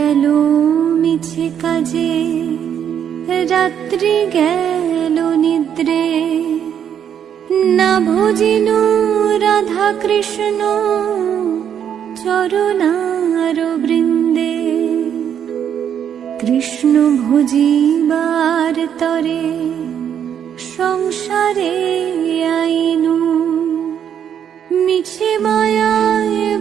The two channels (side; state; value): left; quieter; 8.9 dB